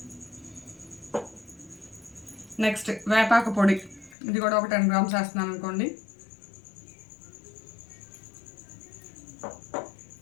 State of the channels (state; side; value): drops out; right; at 4.2 s